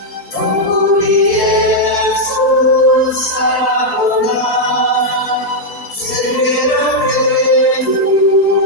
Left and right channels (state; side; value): late; right; 4.4 ms